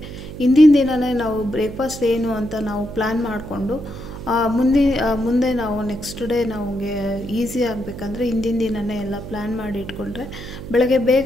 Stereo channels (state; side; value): noise; right; hum, 11 dB below the sound